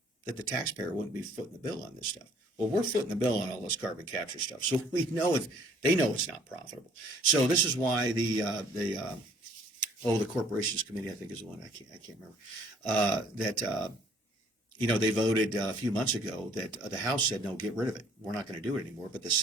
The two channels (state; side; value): normal; both; correlation 0.59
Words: that the taxpayer wouldn't be footing the bill on this stuff. Well, we're footing the bill on all this carbon capture stuff, so we know they know it's not profitable. So this is why the Corporations Committee, I think is the one, I can't remember, they voted a few months ago that the House said, no, get rid of it. We're not going to do it anymore. But the